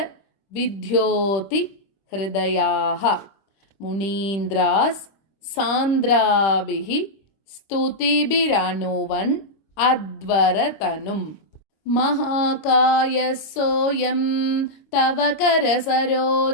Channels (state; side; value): late; right; 26 ms